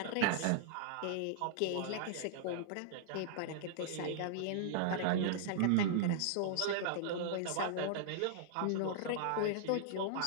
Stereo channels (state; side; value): different; both; correlation -0.02